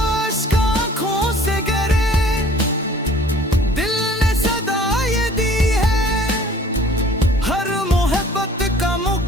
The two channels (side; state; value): both; normal; correlation 0.51